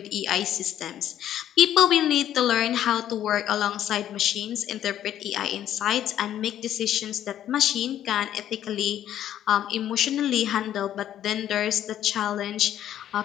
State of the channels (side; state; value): right; quieter; 11.2 dB